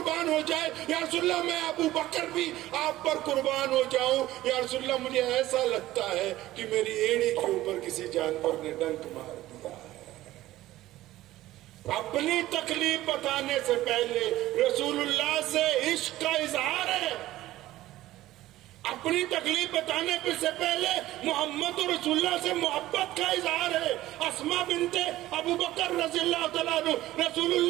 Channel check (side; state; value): left; quieter; 15.6 dB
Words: ہو جائے، یا رسول اللہ میں ابو بکر بھی آپ پر قربان ہو جاؤں، یا رسول اللہ مجھے ایسا لگتا ہے کہ میری ایڑی کے اوپر کسی جانور نے ڈنک مار دیا ہے۔ اپنی تکلیف بتانے سے پہلے رسول اللہ سے عشق کا اظہار ہے، اپنی تکلیف بتانے سے پہلے محمد رسول اللہ سے محبت کا اظہار ہے. اسما بنت ابو بکر رضی اللہ تعالیٰ عنہ رسول